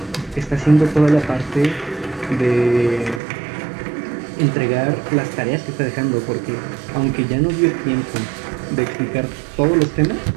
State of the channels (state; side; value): drops out; left; at 3.2 s